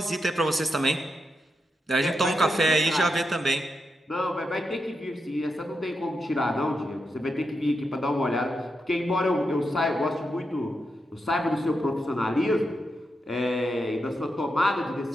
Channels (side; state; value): both; normal; correlation 0.85